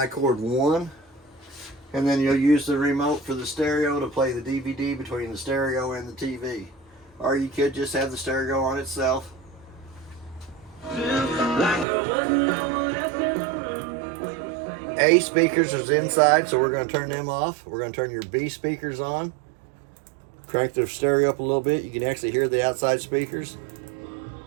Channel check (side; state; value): left; drops out; at 11.9 s